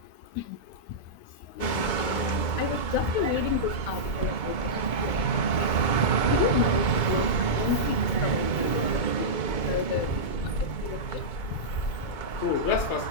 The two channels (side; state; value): right; late; 2.2 ms